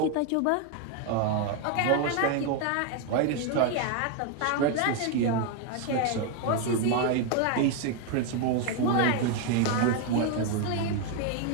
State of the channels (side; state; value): both; different; correlation 0.01